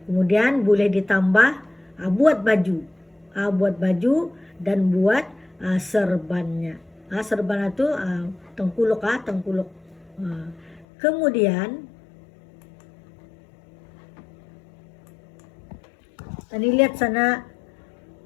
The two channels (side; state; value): right; drops out; at 10.9 s